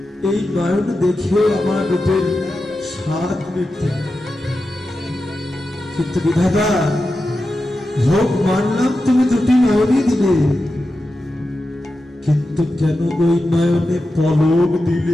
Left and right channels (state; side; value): normal; both; correlation 0.91